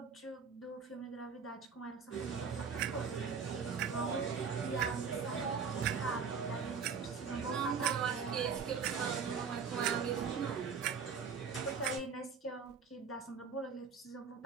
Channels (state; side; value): quieter; left; 6.0 dB